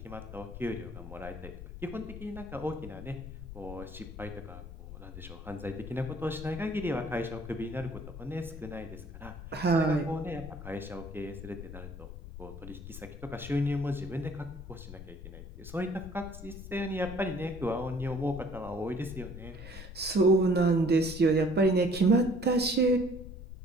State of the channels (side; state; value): left; noise; rumble, 12 dB below the sound